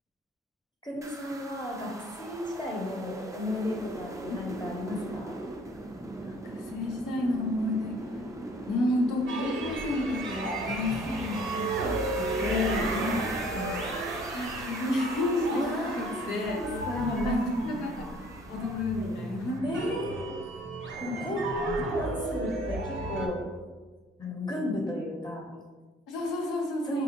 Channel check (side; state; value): both; normal; correlation 0.55